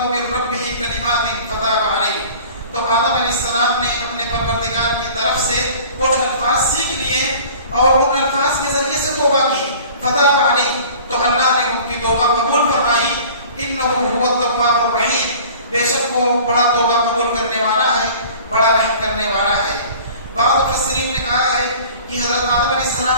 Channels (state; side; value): inverted; both; correlation -0.45